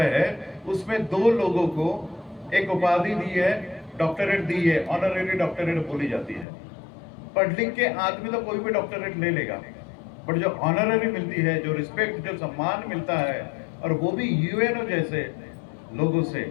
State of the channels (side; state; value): right; drops out; at 6.5 s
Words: हैं उसमें 2 लोगों को एक उपाधि दी है, डॉक्टरेट दी है, ऑनरेरी डॉक्टरेट बोली जाती है। पढ़ लिख के आदमी तो कोई भी डॉक्टरेट ले लेगा, बट जो ऑनरेरी मिलती है, जो रिस्पेक्ट, जो सम्मान मिलता है, और वो भी यूएनओ जैसे लोगों से,